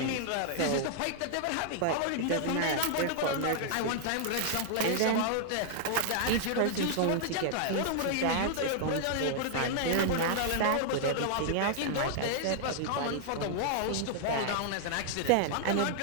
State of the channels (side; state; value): both; different; correlation -0.01